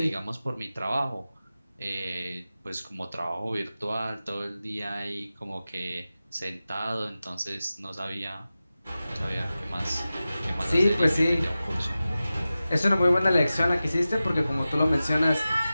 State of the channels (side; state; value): both; inverted; correlation -0.95